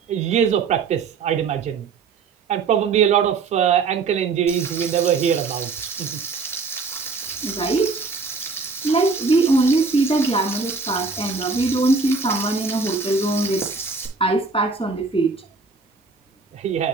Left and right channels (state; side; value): quieter; left; 4.6 dB